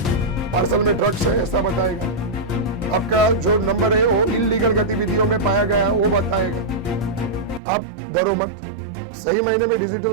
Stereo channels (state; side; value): drops out; left; at 7.6 s